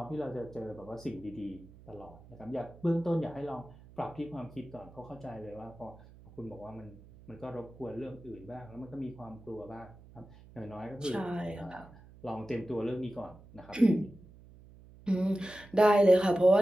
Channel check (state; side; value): noise; right; hum, 21 dB below the sound